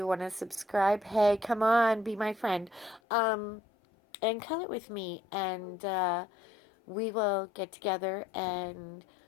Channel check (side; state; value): right; drops out; at 3.0 s